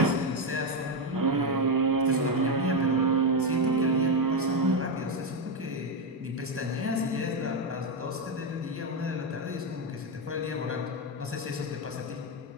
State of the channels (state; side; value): normal; both; correlation 0.07